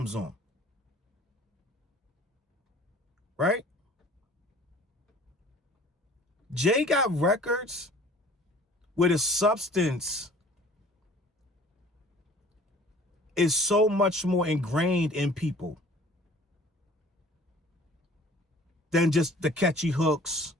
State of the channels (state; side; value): normal; both; correlation 0.50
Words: on? Right? Jay got records where the substance is so much more ingrained in people than just the catchy hooks,